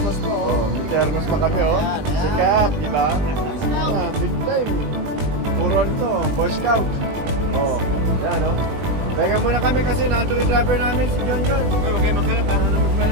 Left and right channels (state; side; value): late; left; 20 ms